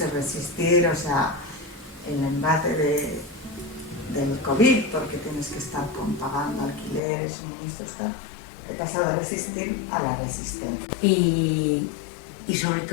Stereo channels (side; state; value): right; drops out; at 7.0 s